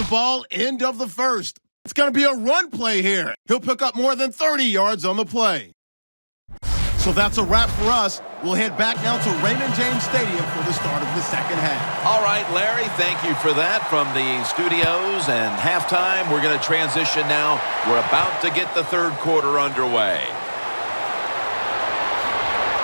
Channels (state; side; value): inverted; both; correlation -1.00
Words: ball, end of the first. It's going to be a run play here. He'll pick up more than 30 yards on the play. So that's a wrap for us. We'll head back now to Raymond James Stadium for the start of the second half. All right, Larry, thank you for that from the studios and halftime. We're going to transition now. We're about to get the third quarter underway.